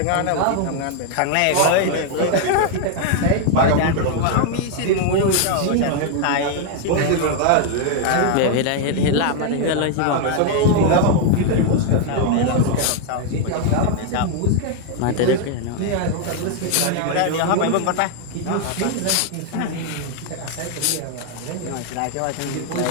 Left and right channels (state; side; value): different; both; correlation 0.00